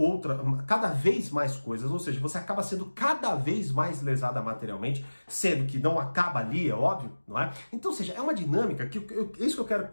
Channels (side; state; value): both; inverted; correlation -1.00